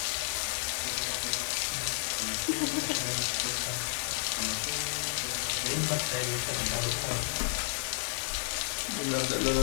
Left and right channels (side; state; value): right; silent; digital silence